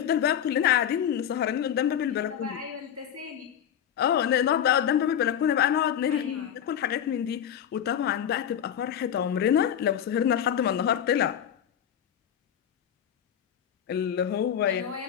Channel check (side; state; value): right; quieter; 9.5 dB